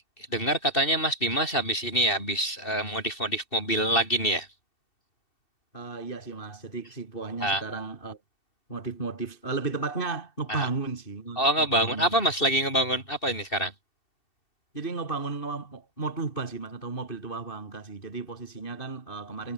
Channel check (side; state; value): right; late; 2.7 ms